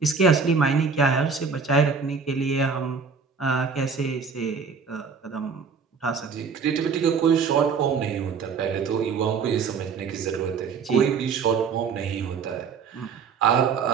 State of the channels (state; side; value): quieter; left; 5.6 dB